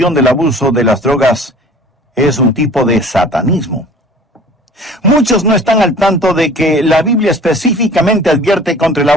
del abuso de las drogas es un tipo de satanismo? Muchos no están al tanto de que la Biblia específicamente advierte contra el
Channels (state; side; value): normal; both; correlation 0.47